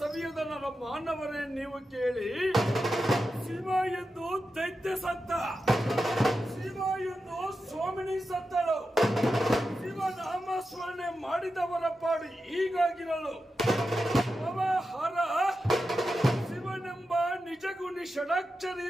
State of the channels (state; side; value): normal; both; correlation 0.90